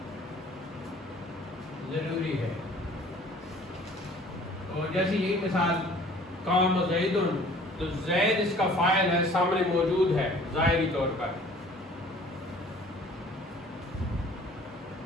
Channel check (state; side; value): normal; both; correlation 0.51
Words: ضروری ہے. اور جیسے یہی مثال قام زید، تو زید اس کا فاعل ہے، سامنے موجود ہے ظاہری طور پر.